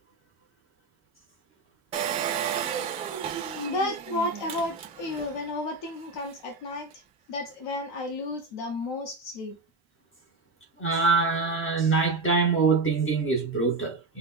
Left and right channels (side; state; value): left; quieter; 3.4 dB